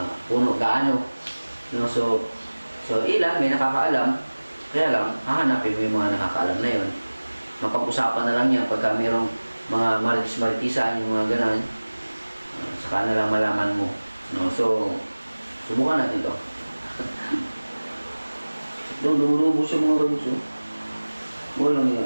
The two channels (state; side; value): inverted; both; correlation -1.00